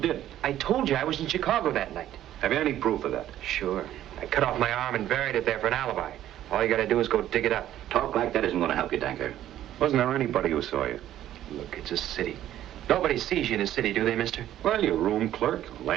I told you I was in Chicago that night. Have you any proof of that? Sure. I cut off my arm and buried it there for an alibi. All you gotta do is go dig it up. Talk like that isn't gonna help you, Danker. Wasn't there anybody who saw you? Look, it's a city. Nobody sees you in a city, do they, mister? Well, your room clerk,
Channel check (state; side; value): quieter; left; 12.4 dB